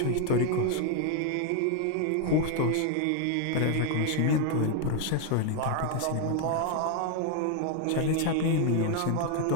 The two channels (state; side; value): different; both; correlation 0.01